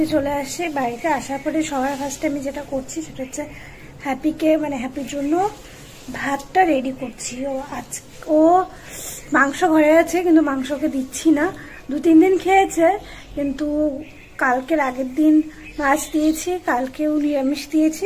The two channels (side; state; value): both; identical; correlation 1.00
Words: চলে আসে, বাড়িতে আসার পরে সবার ফার্স্টে আমি যেটা করছি সেটা হচ্ছে হ্যাপিকে, মানে হ্যাপির জন্য ভাতটা রেডি করছি। ও মাংস ঘরে আছে, কিন্তু মাংসকে দিচ্ছি না। 2-3 দিন খেয়েছে, কিন্তু কালকের আগের দিন মাছ দিয়েছি, কালকেও নিরামিষ দিয়েছি,